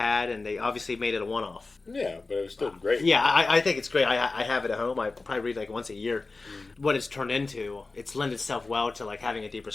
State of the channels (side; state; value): right; quieter; 3.6 dB